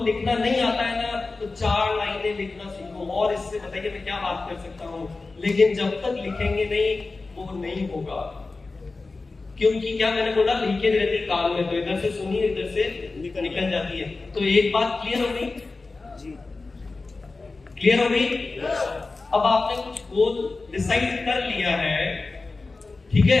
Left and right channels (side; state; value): right; quieter; 3.7 dB